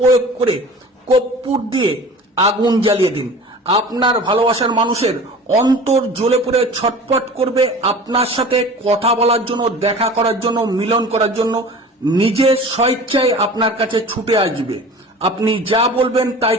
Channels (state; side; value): normal; both; correlation 0.40